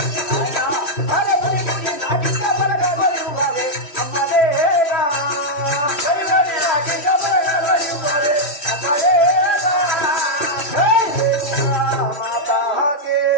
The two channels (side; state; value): right; late; 3.1 ms